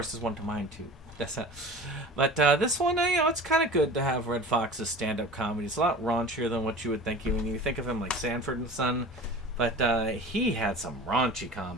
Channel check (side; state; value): both; normal; correlation 0.38